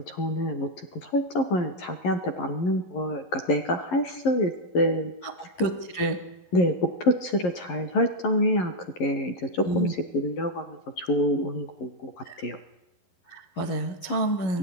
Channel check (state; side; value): late; right; 11 ms